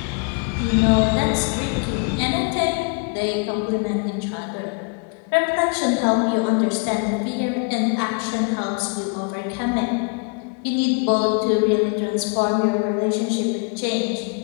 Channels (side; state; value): right; quieter; 34.8 dB